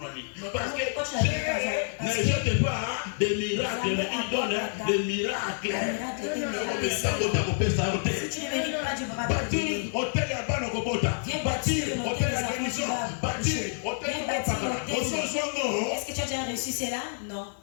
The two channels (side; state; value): right; silent; digital silence